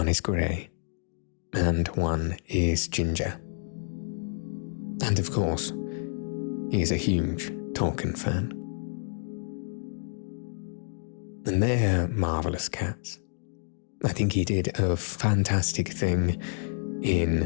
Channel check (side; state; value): right; silent; digital silence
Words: is grey and one is ginger. And of course, he is a huge Tolkien fan. And they're marvellous cats. I think he did a fantastic thing